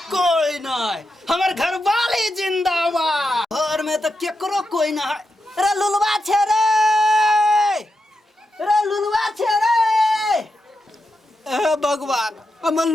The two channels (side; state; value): both; normal; correlation 0.87